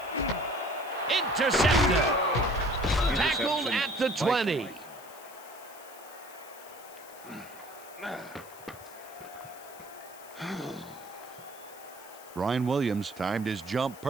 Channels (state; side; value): noise; left; hiss, 19 dB below the sound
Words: Intercepted. Tackled at the 20. Brian Williams timed his jump